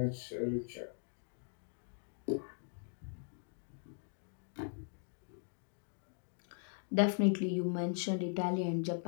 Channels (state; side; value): silent; right; 51 dB below the other